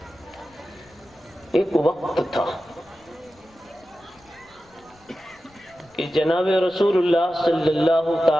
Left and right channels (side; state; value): left; noise; rumble, 29 dB below the sound